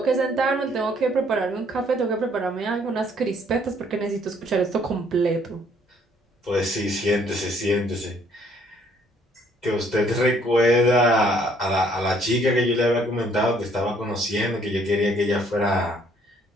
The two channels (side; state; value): both; normal; correlation 0.63